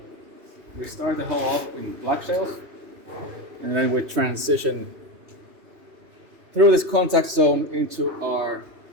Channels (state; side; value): late; left; 2.8 ms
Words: we start the hole off in black shales, and then we transition through this contact zone into our